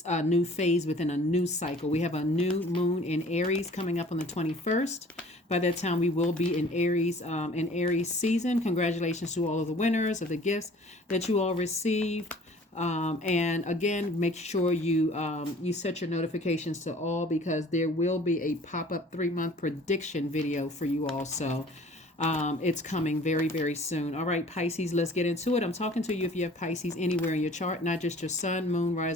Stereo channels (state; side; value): normal; both; correlation 0.50